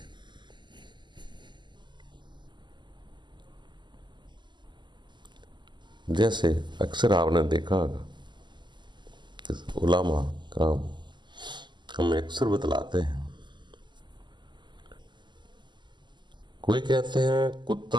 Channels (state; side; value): late; left; 0.22 ms